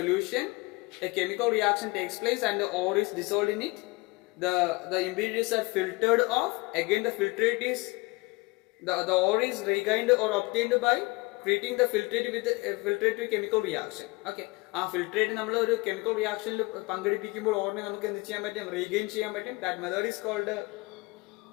a chemical reaction takes place and the ore is dissolved in it. The impurities are filtered off. Again the filtrate is the ore is regained or obtained by treating the filtrate with a chemical reaction. Okay, ആ filtrate നമ്മൾ ഒരു chemical റിയാക്ഷനിൽ പങ്കെടുപ്പിക്കുമ്പോൾ ഓറിനെ നമുക്ക് എന്ത് ചെയ്യാൻ പറ്റും? Regain ചെയ്യാൻ പറ്റും. That method is called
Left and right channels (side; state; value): right; quieter; 24.2 dB